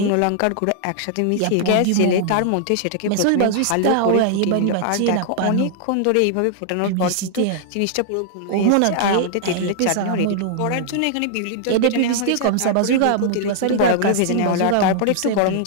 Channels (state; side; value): different; both; correlation -0.01